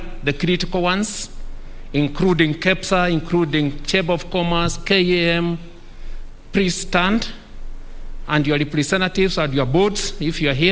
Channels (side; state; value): both; identical; correlation 1.00